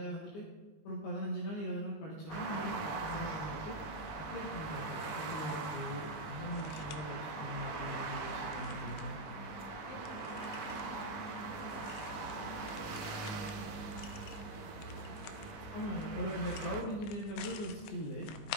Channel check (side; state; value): right; late; 19 ms